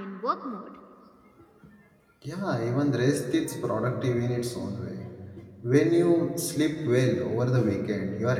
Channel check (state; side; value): identical; both; correlation 1.00